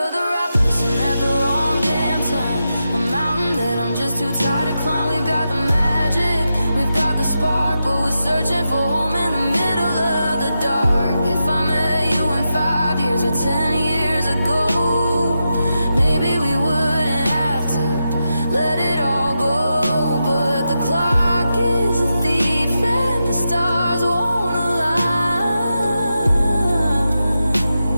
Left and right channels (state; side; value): inverted; both; correlation -0.88